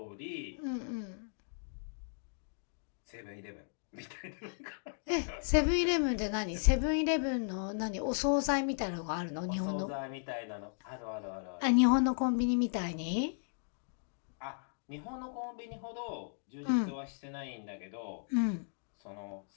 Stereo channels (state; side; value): silent; right; digital silence